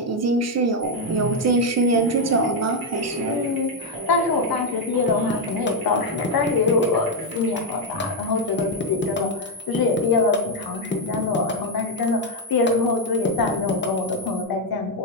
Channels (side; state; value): both; normal; correlation 0.03